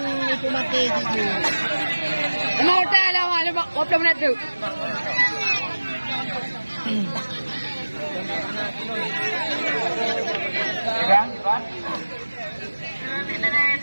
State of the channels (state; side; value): inverted; both; correlation -1.00